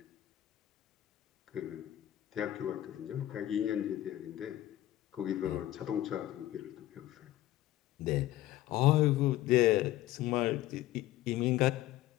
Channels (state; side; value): quieter; right; 14.7 dB